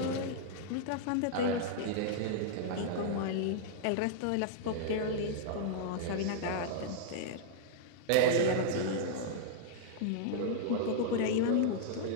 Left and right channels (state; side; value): different; both; correlation -0.01